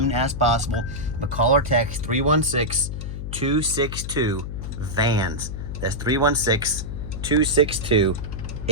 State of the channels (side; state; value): left; noise; hum, 6 dB below the sound